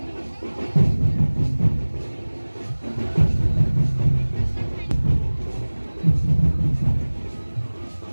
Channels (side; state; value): both; inverted; correlation -1.00